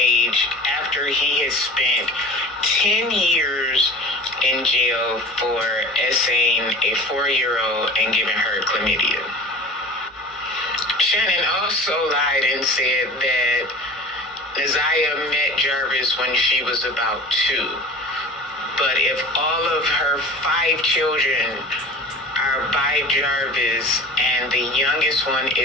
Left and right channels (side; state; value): both; normal; correlation 0.38